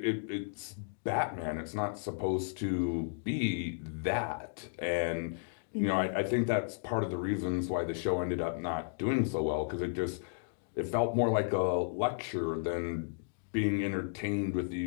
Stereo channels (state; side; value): silent; right; digital silence